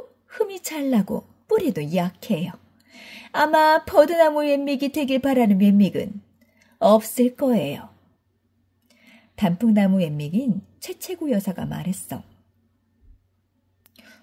흠이 잘 나고 뿌리도 약해요. 아마 버드나무 웬믹이 되길 바라는 웬믹은 없을 거예요. 단풍나무 웬믹인 최채구 여사가 말했어.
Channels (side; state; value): both; identical; correlation 1.00